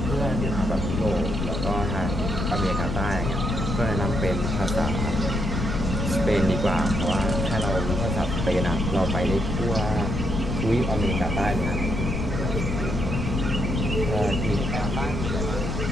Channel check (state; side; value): noise; left; rumble, 2 dB below the sound